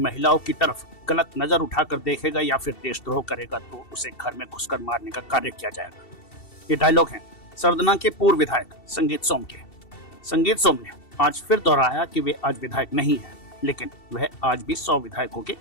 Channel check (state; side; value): late; right; 2.7 ms